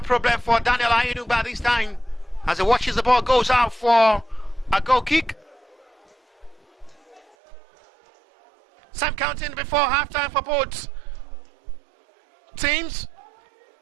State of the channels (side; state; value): left; drops out; at 7.2 s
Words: problem for Daniel Ayinu by this time, as he watches the ball goes out for a goal kick. Same counting before halftime for both teams.